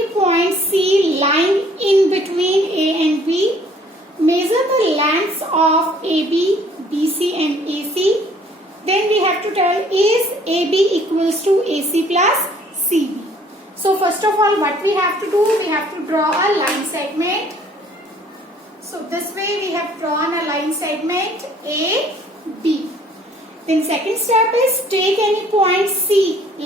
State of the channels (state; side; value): normal; both; correlation 0.58